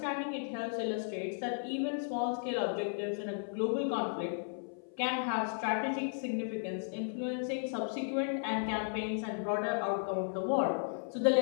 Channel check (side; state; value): right; silent; 55 dB below the other